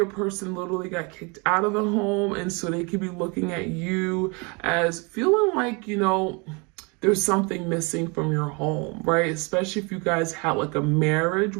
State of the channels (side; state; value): left; quieter; 30.5 dB